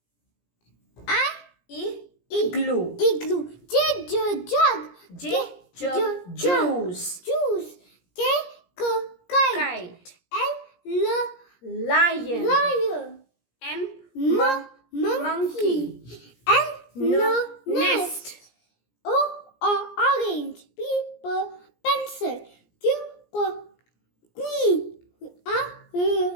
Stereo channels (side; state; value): right; late; 17 ms